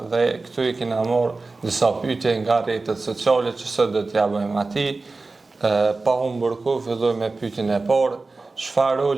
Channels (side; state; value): left; quieter; 3.6 dB